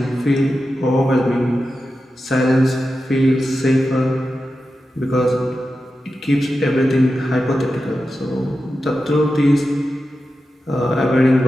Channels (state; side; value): normal; both; correlation 0.91